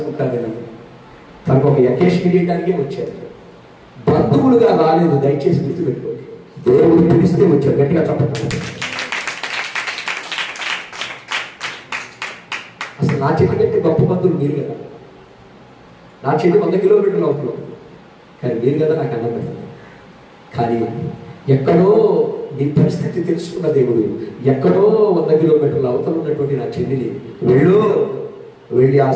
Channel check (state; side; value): identical; both; correlation 1.00